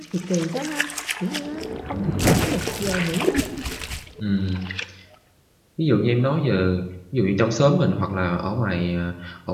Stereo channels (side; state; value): both; identical; correlation 1.00